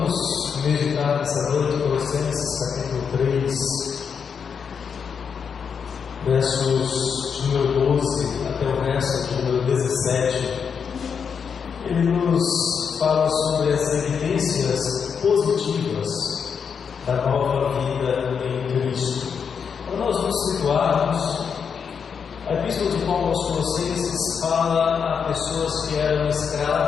meditar nessa noite, Colossenses capítulo 3, versos de número 12 até o verso de número 17, ele nos fala sobre as evidências positivas da nova vida em Cristo. Para nós nos situarmos, a Epístola de Paulo aos Colossenses fala a pessoas que eram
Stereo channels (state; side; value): quieter; right; 6.6 dB